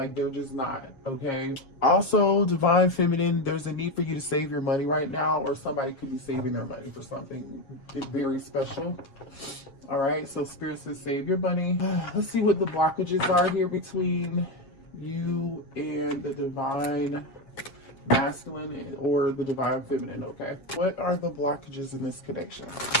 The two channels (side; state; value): right; late; 7.3 ms